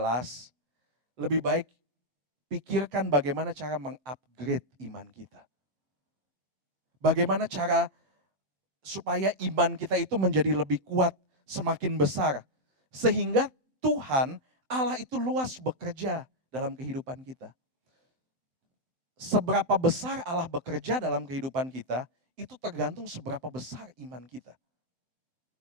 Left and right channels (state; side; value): late; left; 7.8 ms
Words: lebih baik pikirkan bagaimana cara mengupgrade iman kita. Bagaimana cara supaya iman kita itu menjadi lebih kuat, semakin besar. Sehingga Tuhan Allah itu luas bekerja dalam kehidupan kita. Seberapa besar Allah bekerja dalam kehidupan kita, itu tergantung seberapa besar iman kita.